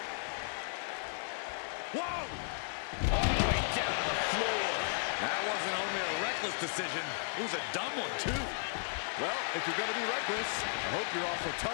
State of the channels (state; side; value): silent; right; 55 dB below the other